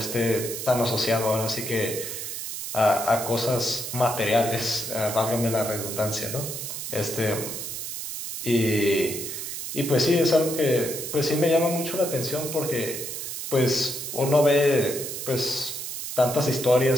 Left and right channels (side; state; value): right; noise; hiss, 6 dB below the sound